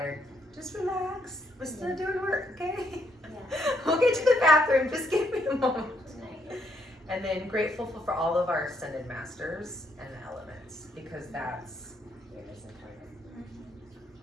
just relax. We're still doing work, okay? Yeah. We'll get to the bathroom. Just give me a moment. Nice. And then grateful for all of our ascended masters and the elements, because that's.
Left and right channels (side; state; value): both; normal; correlation 0.74